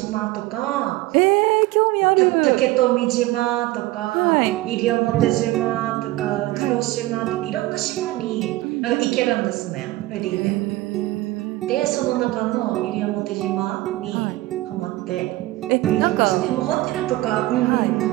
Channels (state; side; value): quieter; left; 18.0 dB